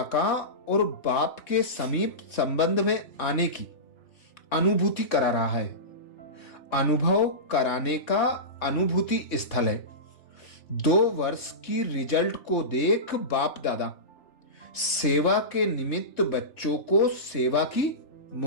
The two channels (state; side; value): late; right; 3.4 ms